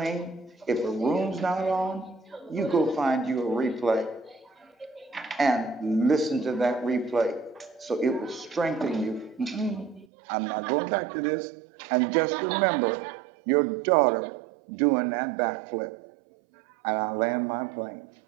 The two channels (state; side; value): drops out; left; at 10.1 s